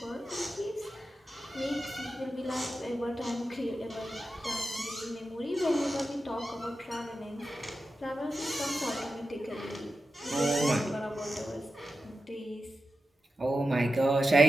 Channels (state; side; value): normal; both; correlation 0.91